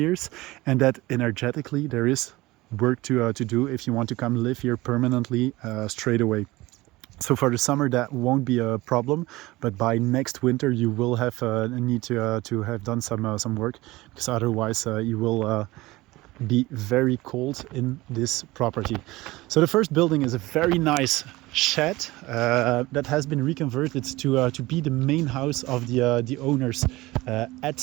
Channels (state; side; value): quieter; left; 19.7 dB